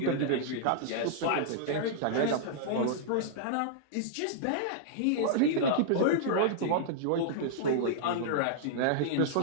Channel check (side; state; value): both; different; correlation -0.02